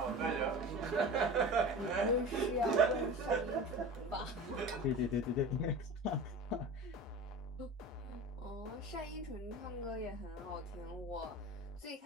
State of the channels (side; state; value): both; normal; correlation 0.34